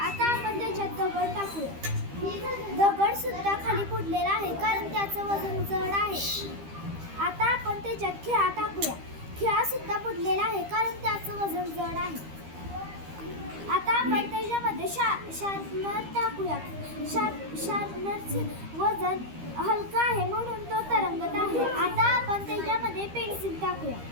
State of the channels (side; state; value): left; late; 13 ms